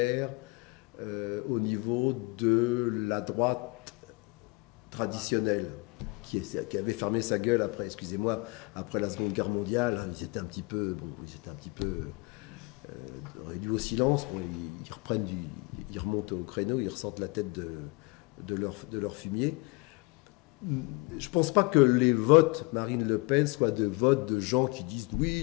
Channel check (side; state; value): right; quieter; 26.8 dB